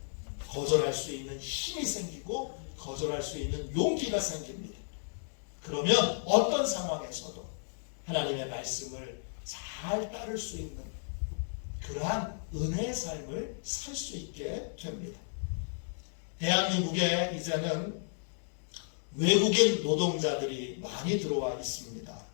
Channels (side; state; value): right; silent; digital silence